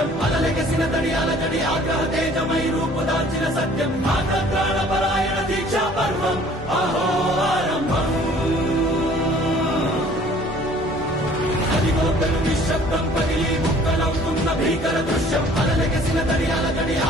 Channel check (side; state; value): both; normal; correlation 0.53